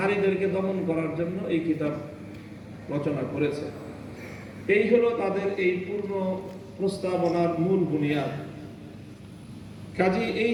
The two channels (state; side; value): identical; both; correlation 1.00